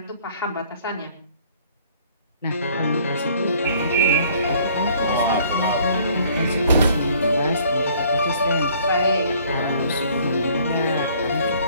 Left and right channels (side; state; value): both; inverted; correlation -0.58